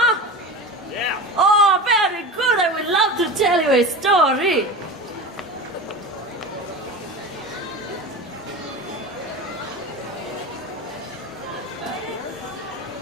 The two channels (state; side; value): normal; both; correlation 0.30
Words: Yeah. Oh, very good. I would love to tell you a story.